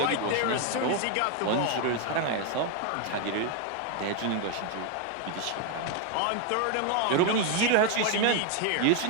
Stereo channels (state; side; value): different; both; correlation 0.01